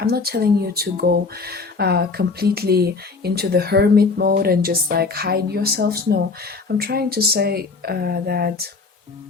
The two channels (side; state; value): right; quieter; 4.2 dB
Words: not telling you to go completely into the hermit mode and just like hide yourselves. No, I'm trying to say that